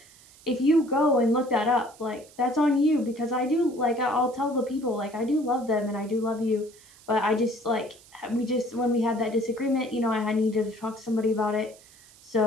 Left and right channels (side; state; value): right; noise; hiss, 24 dB below the sound